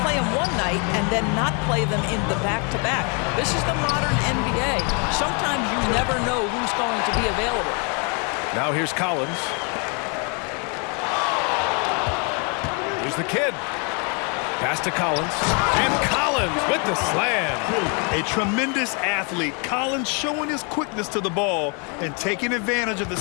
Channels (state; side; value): quieter; right; 35.6 dB